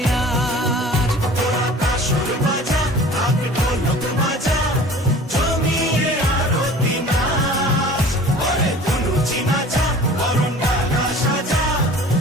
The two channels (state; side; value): normal; both; correlation 0.44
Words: আজ তোরা কাসর বাজা ঢাক ঢোলক বাজা জমিয়ে আরতি নাচ ওরে ধুনুচি নাচা বরণ ডালা সাজা